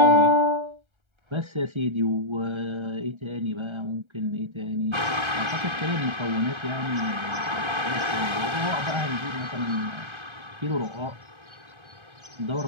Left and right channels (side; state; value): left; late; 1.3 ms